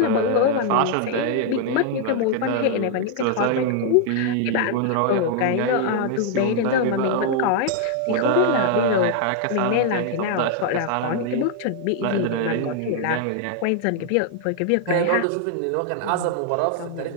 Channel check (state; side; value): different; both; correlation 0.00